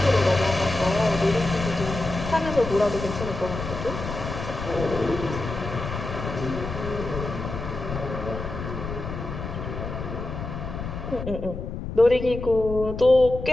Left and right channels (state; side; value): noise; left; rumble, 7 dB below the sound